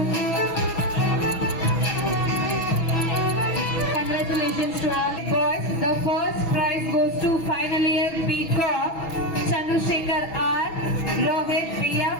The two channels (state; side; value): late; right; 6.1 ms